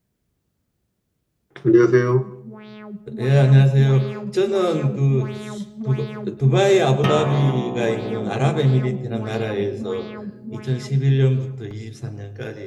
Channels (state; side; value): identical; both; correlation 1.00